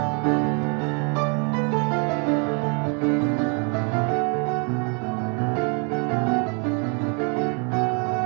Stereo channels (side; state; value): left; quieter; 35.4 dB